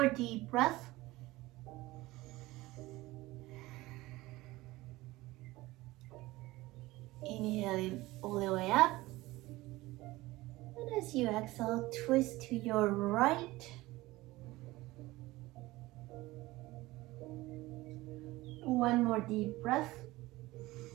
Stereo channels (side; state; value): left; quieter; 19.1 dB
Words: deep breath. Inhaling all the way up. And as you exhale, twist to your right. One more deep breath.